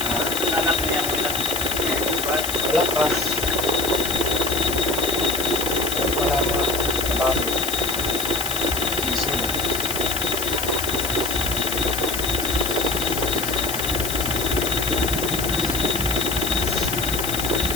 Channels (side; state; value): left; noise; hiss, 4 dB below the sound